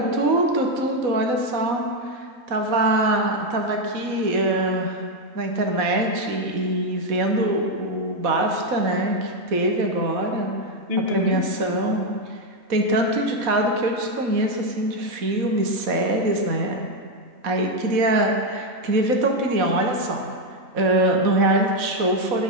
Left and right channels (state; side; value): late; left; 4.1 ms